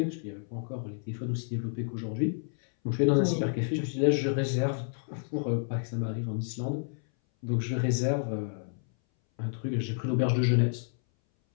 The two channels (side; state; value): right; silent; 58 dB below the other